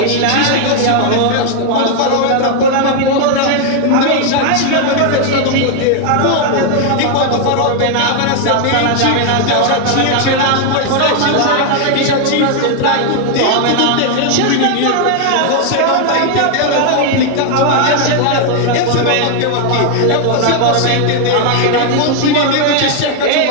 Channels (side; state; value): both; different; correlation 0.00